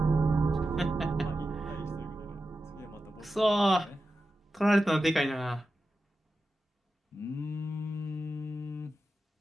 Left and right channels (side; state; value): both; normal; correlation 0.91